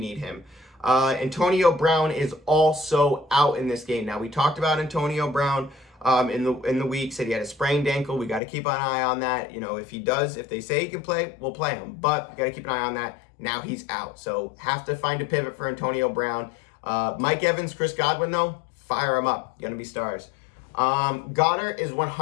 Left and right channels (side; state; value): right; drops out; at 8.4 s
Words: him. Antonio Brown is also out in this game. Now, we talked about Antonio Brown in the week, said he had a sprained ankle. We got to keep an eye on that. You know, if they say he can play, we'll play him. But we got to keep an eye on that. Now he's out. So have to find a pivot for Antonio Brown. Mike Evans, Chris Godwin, though, fire them up. Going to be stars. Goddard is